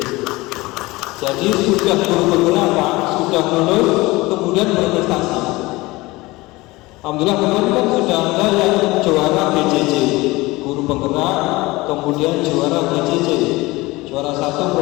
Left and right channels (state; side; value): quieter; right; 21.2 dB